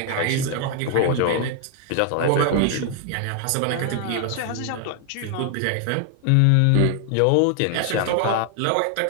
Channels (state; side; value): different; both; correlation 0.00